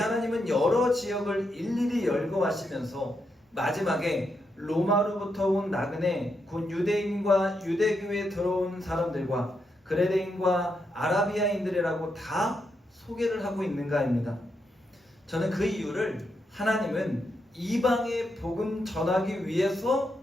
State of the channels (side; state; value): both; normal; correlation 0.82